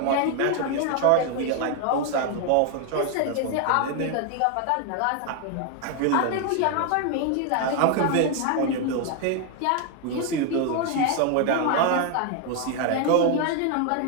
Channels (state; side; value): different; both; correlation 0.00